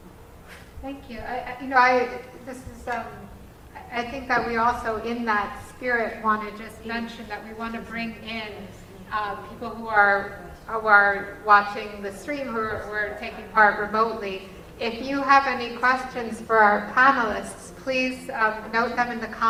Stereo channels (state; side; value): identical; both; correlation 1.00